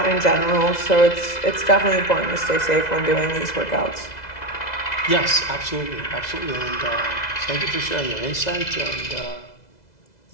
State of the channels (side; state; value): right; late; 2.0 ms